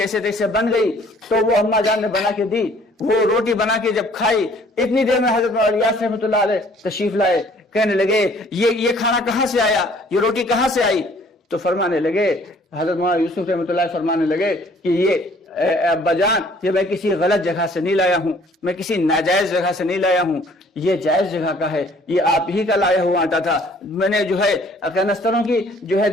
تیسے بن گئی، تو وہ اما جان نے بنا کے دی۔ وہ روٹی بنا کے جب کھائی، اتنی دیر میں حضرت مولانا الیاس رحمۃ اللہ علیہ تشریف لائے، کہنے لگے یہ کھانا کہاں سے آیا، یہ روٹی کہاں سے آئی؟ تو فرمانے لگے، حضرت مولانا یوسف رحمۃ اللہ فرمانے لگے کہ یہ ابا جان، یہ میں کسی غلط جگہ سے نہیں لایا ہوں، میں کسی ناجائز جگہ سے نہیں لایا ہوں، یہ جائز جگہ کا ہے، یہ آپ ہی کا لایا ہوا آٹا تھا، میں نے جو ہے کنستروں کی جو ہے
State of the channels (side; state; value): both; normal; correlation 0.57